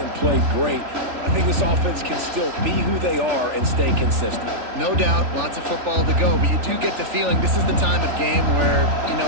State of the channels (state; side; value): late; left; 3.4 ms